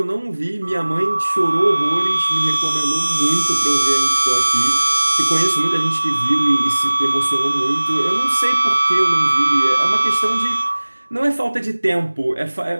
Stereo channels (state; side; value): inverted; both; correlation -1.00